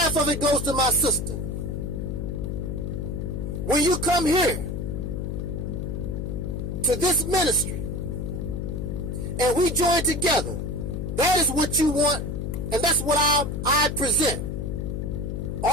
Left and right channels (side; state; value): left; noise; hum, 3 dB below the sound